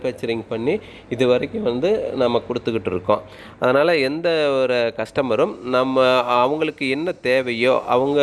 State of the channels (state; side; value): identical; both; correlation 1.00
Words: பண்ணி இது வரைக்கும் வந்து நம்ம கொடுத்துக்கிட்டு இருக்கோம். அதனால் எந்த ஒரு கஸ்டமரும் நம்ம அவங்களுக்கு என்ன தேவையோ, அவங்க